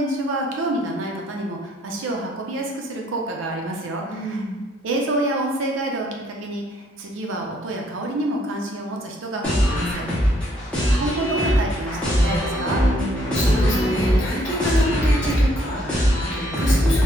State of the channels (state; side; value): normal; both; correlation 0.67